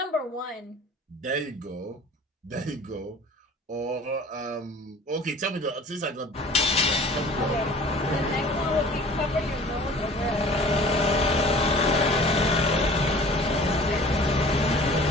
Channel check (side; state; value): both; normal; correlation 0.46